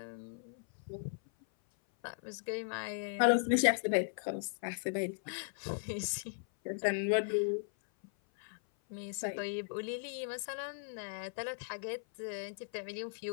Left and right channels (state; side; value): silent; right; 53 dB below the other